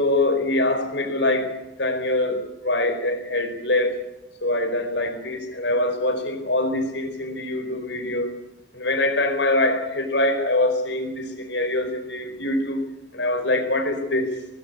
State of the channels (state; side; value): normal; both; correlation -0.12